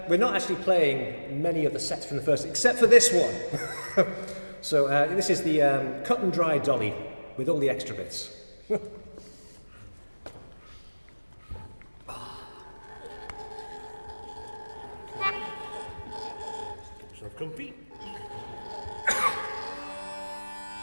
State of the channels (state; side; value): inverted; both; correlation -1.00